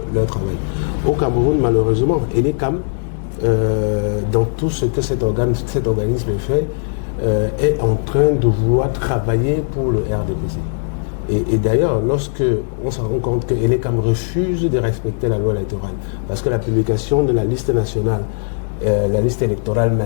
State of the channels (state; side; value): silent; right; digital silence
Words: leur travail. Au Cameroun, malheureusement, l'Elecam, dans tout ce que cet organisme fait, est en train de vouloir travailler pour le RDPC. Et d'ailleurs, lorsque on se rend compte que l'Elecam refuse de respecter la loi électorale, parce que la publication de la liste nationale, la liste électorale